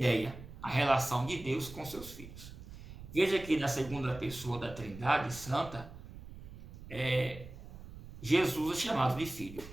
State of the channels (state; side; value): noise; right; rumble, 14 dB below the sound